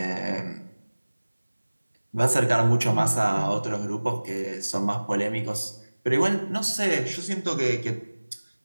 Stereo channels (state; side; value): inverted; both; correlation -1.00